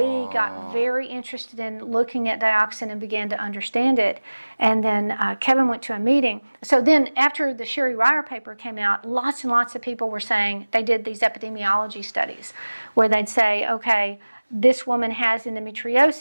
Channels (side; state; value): both; inverted; correlation -1.00